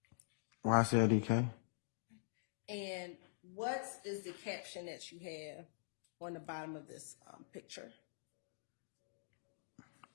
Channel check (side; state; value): right; silent; digital silence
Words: YSL And what is the caption that you have on the bottom of this picture?